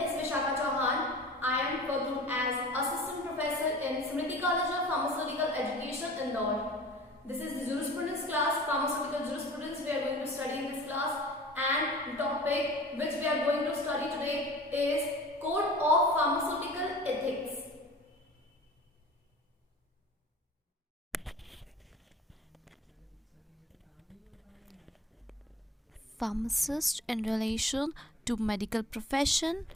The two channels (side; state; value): both; normal; correlation 0.43